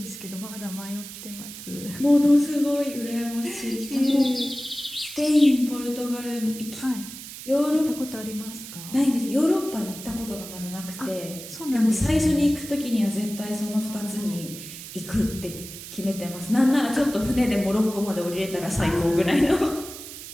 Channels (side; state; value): right; noise; hiss, 12 dB below the sound